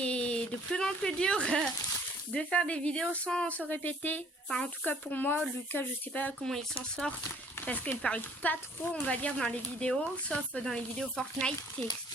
de plus en plus dur de faire des vidéos sans se répéter. Enfin en tout cas pour moi, Lucas je sais pas comment il s'en sort, parce qu'il parle pas trop on va dire dans les vidéos, sauf dans les vidéos Fortnite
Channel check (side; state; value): both; normal; correlation 0.58